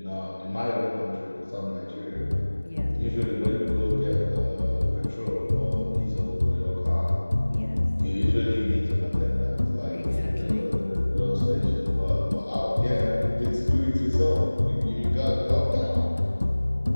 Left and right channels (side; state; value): both; inverted; correlation -1.00